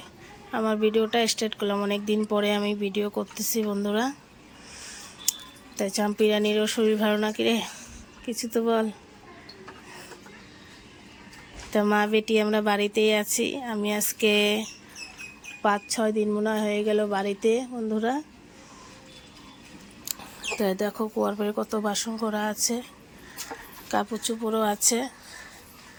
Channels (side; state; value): both; identical; correlation 1.00